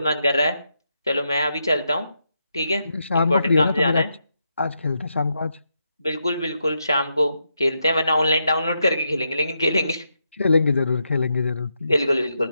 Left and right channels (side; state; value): both; inverted; correlation -0.82